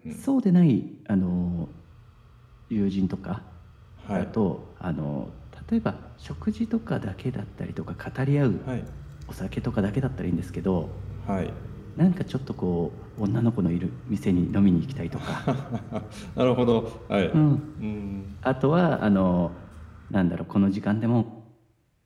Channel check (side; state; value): both; identical; correlation 1.00